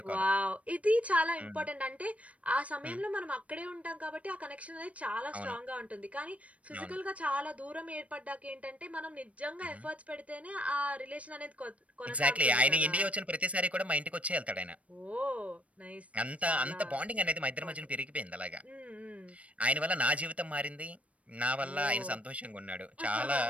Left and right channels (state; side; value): late; left; 0.065 ms